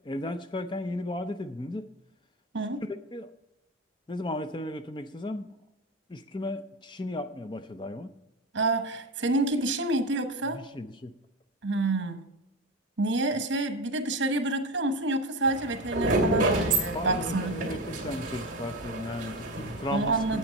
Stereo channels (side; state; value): both; normal; correlation 0.22